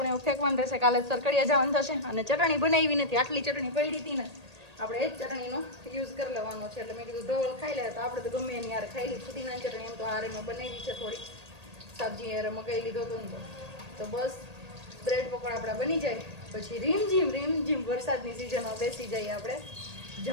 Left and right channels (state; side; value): late; left; 1.8 ms